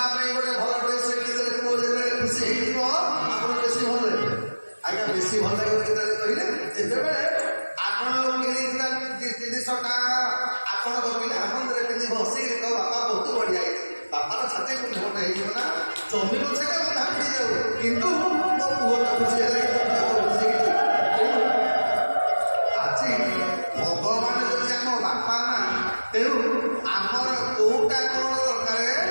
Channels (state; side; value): inverted; both; correlation -1.00